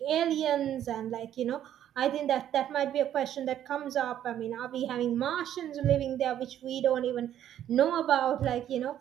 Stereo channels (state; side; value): quieter; left; 11.0 dB